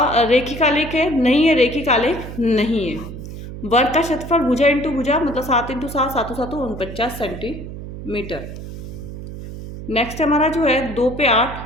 आलेख है? नहीं है, रेखिक आलेख नहीं है। वर्ग का क्षेत्रफल भुजा इंटू भुजा मतलब 7 × 7 7 7 49 सेंटीमीटर। नेक्स्ट हमारा जो है 2 पे 8,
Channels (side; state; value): right; noise; hum, 10 dB below the sound